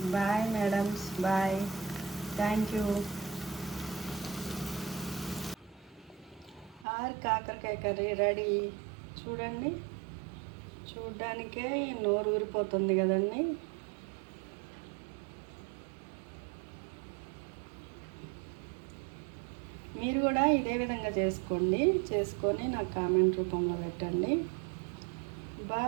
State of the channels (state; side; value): drops out; left; at 6.9 s